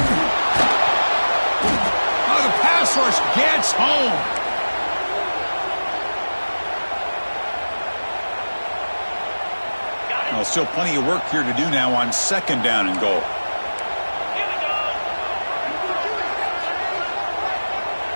Oh, the pass rush gets home. Well, still plenty of work here to do now on 2nd down and goal.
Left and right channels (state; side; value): inverted; both; correlation -1.00